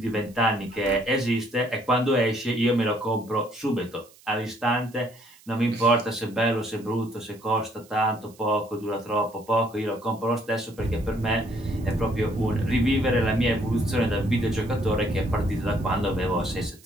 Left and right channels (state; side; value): noise; right; hiss, 26 dB below the sound